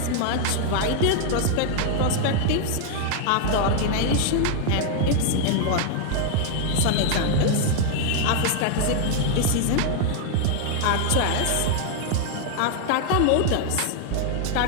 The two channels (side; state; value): both; different; correlation 0.00